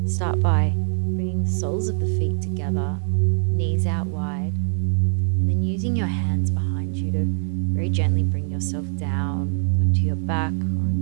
start by bringing the soles of the feet together, knees out wide, and then using your hands behind you to very gently bring yourself down onto your back or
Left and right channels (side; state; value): left; silent; digital silence